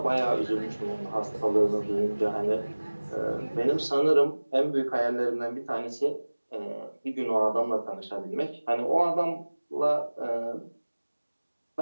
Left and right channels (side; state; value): both; inverted; correlation -1.00